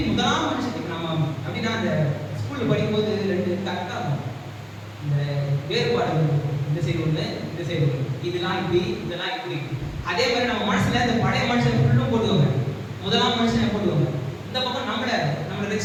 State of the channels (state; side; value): identical; both; correlation 1.00